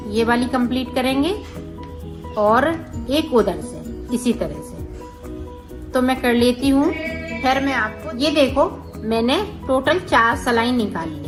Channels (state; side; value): identical; both; correlation 1.00